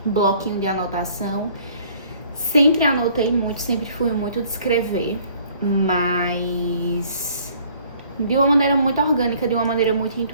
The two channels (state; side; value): inverted; both; correlation -0.57